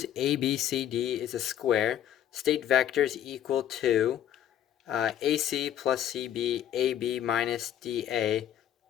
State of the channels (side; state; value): right; quieter; 10.7 dB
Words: ABCD is a square. State vectors equal to AC plus CB, AB minus DA,